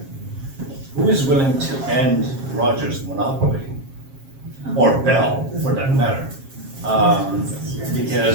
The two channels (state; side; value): late; left; 7.4 ms